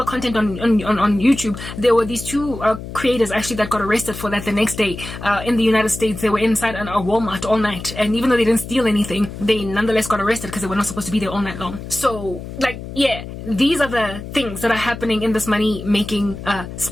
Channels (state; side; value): noise; left; hum, 10 dB below the sound